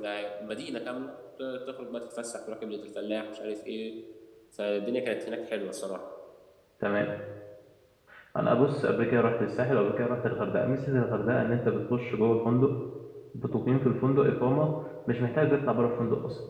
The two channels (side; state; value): both; identical; correlation 1.00